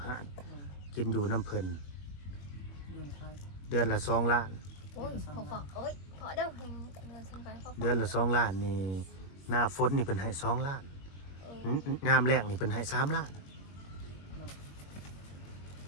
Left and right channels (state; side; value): late; right; 21 ms